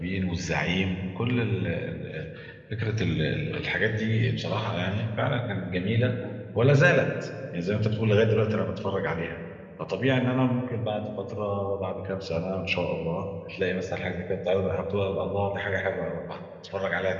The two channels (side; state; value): both; identical; correlation 1.00